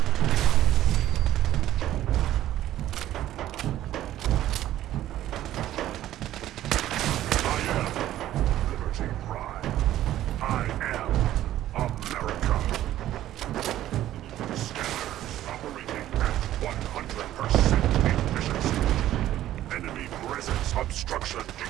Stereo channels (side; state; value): left; quieter; 13.2 dB